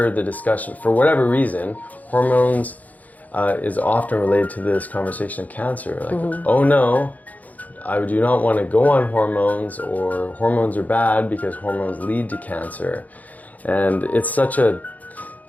the discussion, for whatever reason, hormones is often related to this conversation of cancer. Like, oh no, I do not want to go on hormones, or hormones are bad because hormones lead to cancer. And it's such a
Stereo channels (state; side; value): late; right; 0.078 ms